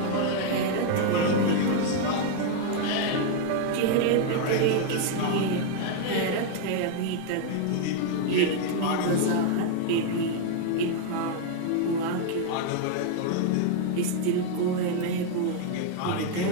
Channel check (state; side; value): different; both; correlation 0.00